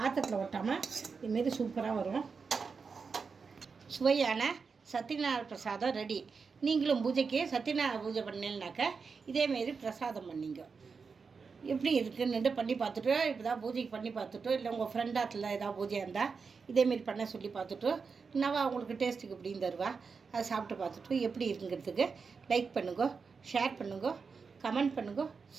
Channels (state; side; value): quieter; left; 5.2 dB